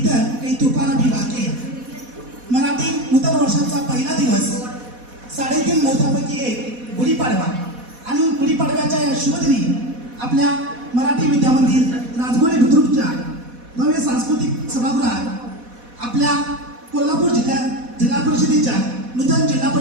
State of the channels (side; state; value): left; late; 4.1 ms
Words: काही तुफान अभी बाकी है. मराठी नूतन वर्षाचा पहिला दिवस 3.5 मुहूर्तापैकी एक गुढीपाडवा आणि गुढीपाडव्याच्या या शुभदिनी आपल्या मराठी विद्यामंदिर राजगोळे बुद्रुकच्या भव्य सांस्कृतिक सभागृहात आपल्या कोल्हापूर जिल्हा परिषदेच्या नूतन जिल्हा